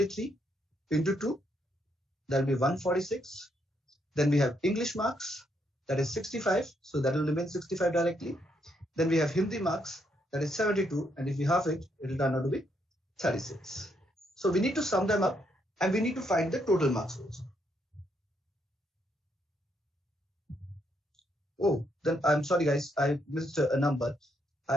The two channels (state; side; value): normal; both; correlation 0.75